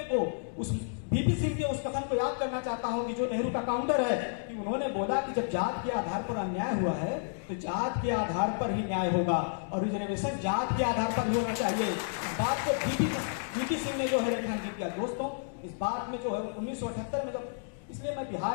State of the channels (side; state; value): right; silent; digital silence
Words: को उस बीपी सिंह के उस कथन को याद करना चाहता हूं कि जो नेहरू का काउंटर है कि उन्होंने बोला कि जब जात के आधार पर अन्याय हुआ है तो जात के आधार पर ही न्याय होगा और रिजर्वेशन जात के आधार पर ही होना चाहिए। इस बात को बीपी सिंह ने जो है रेखांकित किया। दोस्तों इस बात में जो है 1978 में जब, इसलिए मैं